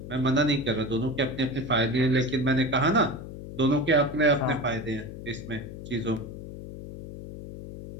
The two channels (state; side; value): noise; left; hum, 11 dB below the sound